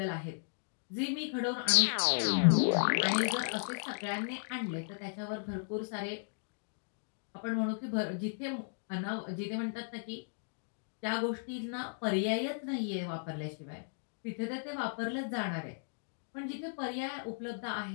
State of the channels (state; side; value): silent; right; digital silence